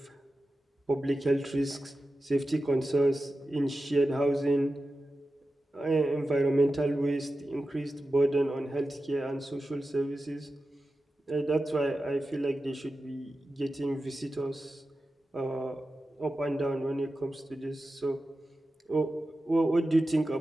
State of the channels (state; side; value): normal; both; correlation 0.93